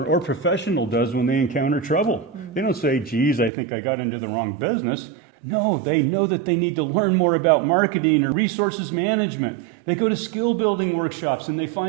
or professional does when they encounter trouble. They don't say, geez, I think I got into the wrong business. No, they know that they need to learn more about marketing or resources management. They go to skill building workshops and they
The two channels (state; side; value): drops out; left; at 3.5 s